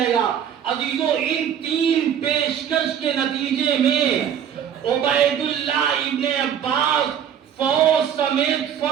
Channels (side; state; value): left; quieter; 8.9 dB